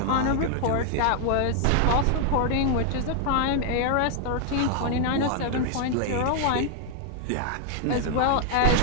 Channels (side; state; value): both; different; correlation 0.00